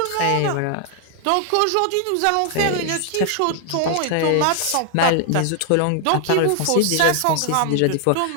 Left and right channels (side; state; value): both; different; correlation 0.00